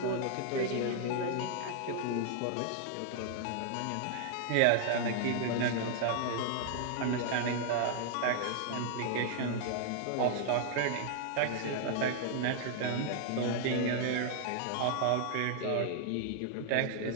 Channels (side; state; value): both; different; correlation 0.00